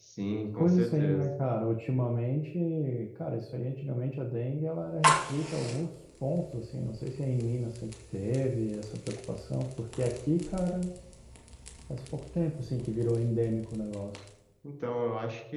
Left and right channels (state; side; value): identical; both; correlation 1.00